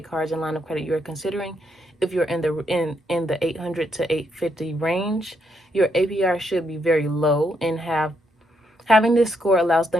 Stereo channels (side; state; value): both; normal; correlation 0.77